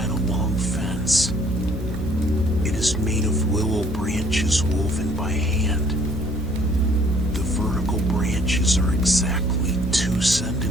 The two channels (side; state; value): both; normal; correlation 0.59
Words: a long fence. It is made of willow branches woven by hand. The vertical branches are exactly 2